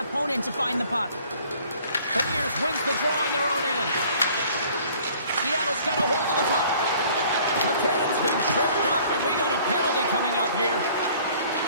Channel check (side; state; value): both; inverted; correlation -0.54